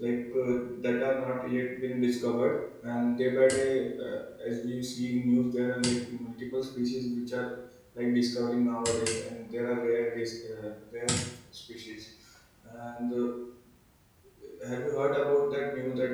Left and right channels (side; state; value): both; identical; correlation 1.00